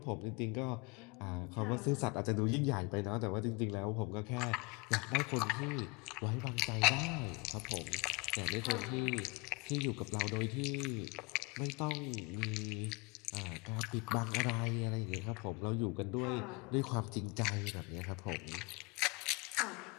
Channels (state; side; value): quieter; right; 27.8 dB